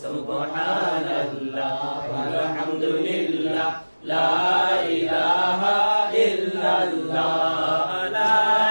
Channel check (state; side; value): inverted; both; correlation -1.00